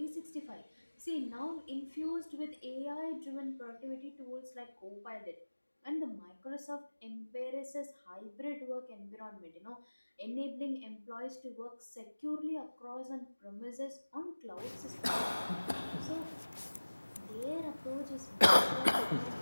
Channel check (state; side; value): inverted; both; correlation -1.00